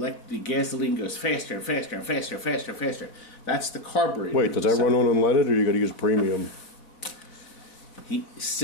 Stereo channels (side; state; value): right; late; 3.9 ms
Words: the gasoline goes faster and faster and faster and faster and faster. That's the carburetor. Wait, does that run on unleaded, or you got to use premium? He